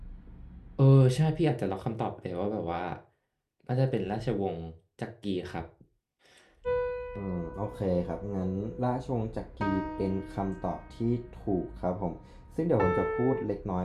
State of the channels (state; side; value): identical; both; correlation 1.00